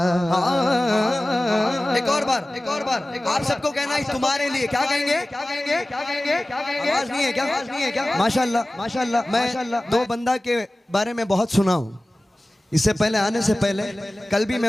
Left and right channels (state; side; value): normal; both; correlation 0.97